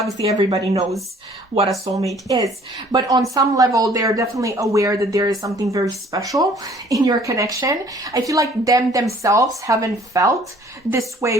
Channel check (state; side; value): normal; both; correlation 0.56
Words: everybody knows what a soulmate is. But on some level, they're definitely aware that there is something very special in your connection. I feel like themselves haven't felt this way